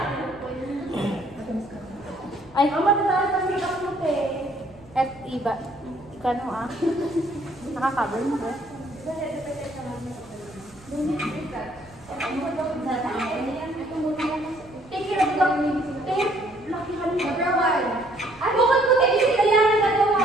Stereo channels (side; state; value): right; noise; rumble, 25 dB below the sound